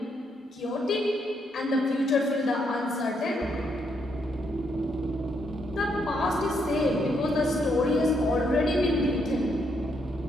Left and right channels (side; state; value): both; normal; correlation 0.76